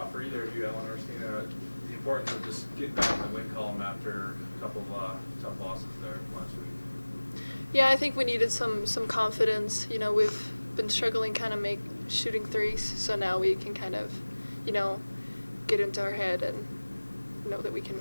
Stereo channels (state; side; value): inverted; both; correlation -1.00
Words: for either of you, Ellen or Stina, the importance of just getting back in the win column after a couple of tough losses there last week. Yeah, I think we needed some confidence. You know, we've been struggling kind of shooting threes, so now we can kind of, you know, get into our head and know that we can